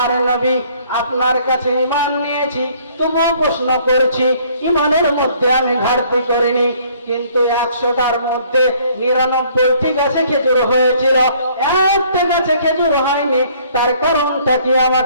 নবী, আপনার কাছে ঈমান নিয়েছি, তবুও প্রশ্ন করছি, ঈমানের মধ্যে আমি ঘাটতি করিনি, কিন্তু 100টার মধ্যে 99টি গাছে খেজুর হয়েছিল, একটা গাছে খেজুর হয়নি, তার কারণটা কি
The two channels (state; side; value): inverted; both; correlation -0.60